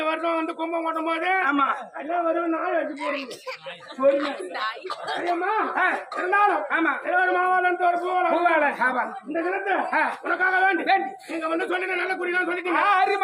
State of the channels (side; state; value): both; identical; correlation 1.00